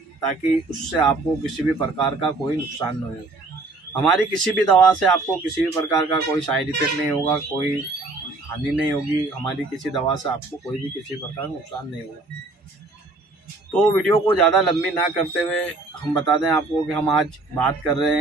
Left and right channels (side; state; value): left; quieter; 3.3 dB